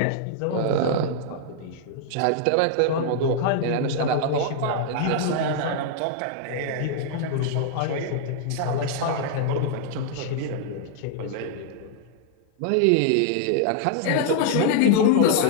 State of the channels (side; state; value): both; different; correlation -0.01